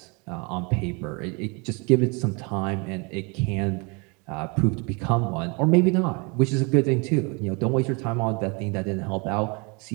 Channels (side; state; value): left; quieter; 31.0 dB